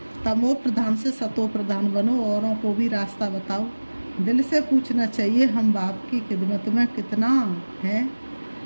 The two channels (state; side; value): inverted; both; correlation -1.00